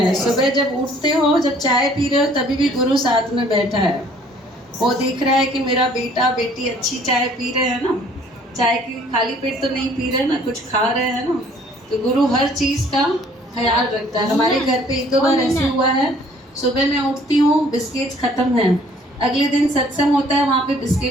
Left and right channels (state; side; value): normal; both; correlation 0.57